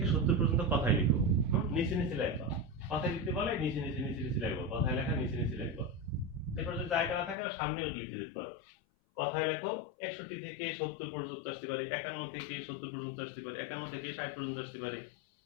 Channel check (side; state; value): right; drops out; at 7.4 s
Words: 70 পর্যন্ত কথাই লিখো। নিচে নিচে লেখবা। কথায় লিখতে বলে নিচে নিচে নিচে নিচে লিখবো, কথায় লেখা নিচে নিচে লিখবা। এরপর যদি জায়গা না থাকে সামনেও লিখে দিতে পারো। কথায় লেখো 61 থেকে 70 পর্যন্ত আসতে পারে, 51 থেকে 70 পর্যন্ত আসতে পারে, 51 থেকে 60 পর্যন্ত আসতে পারে।